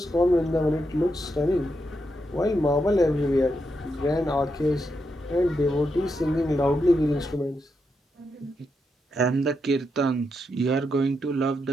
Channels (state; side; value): normal; both; correlation 0.83